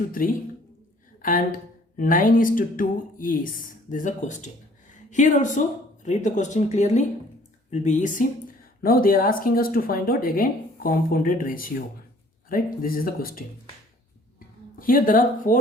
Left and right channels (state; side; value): normal; both; correlation 0.56